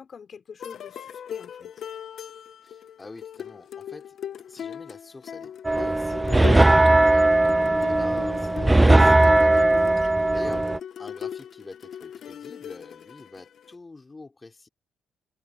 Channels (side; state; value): both; normal; correlation 0.98